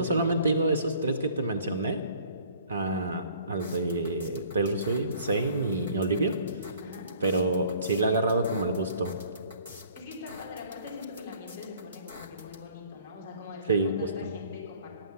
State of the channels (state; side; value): inverted; both; correlation -0.54